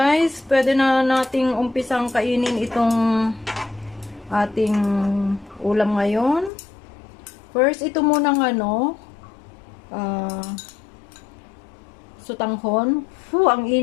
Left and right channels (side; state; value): right; drops out; at 6.5 s